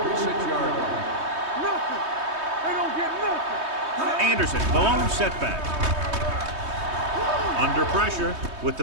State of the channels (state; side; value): late; left; 3.2 ms